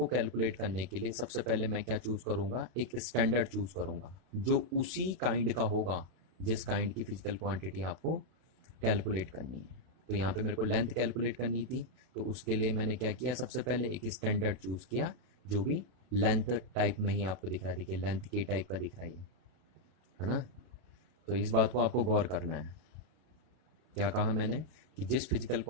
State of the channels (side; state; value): left; late; 32 ms